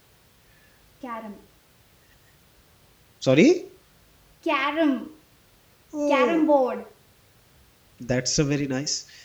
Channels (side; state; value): both; identical; correlation 1.00